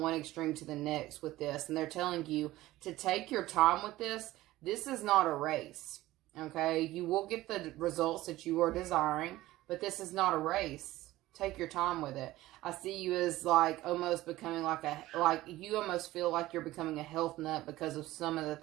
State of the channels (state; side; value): quieter; left; 16.7 dB